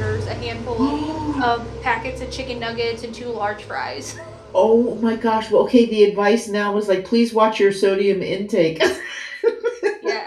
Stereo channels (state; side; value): identical; both; correlation 1.00